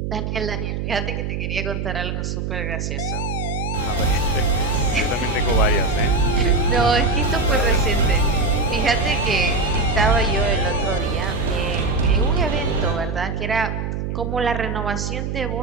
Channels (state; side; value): noise; right; hum, 3 dB below the sound